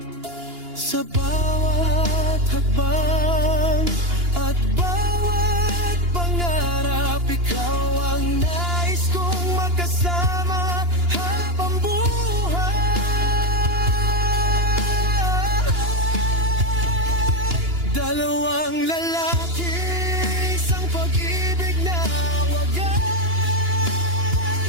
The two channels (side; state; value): left; late; 2.9 ms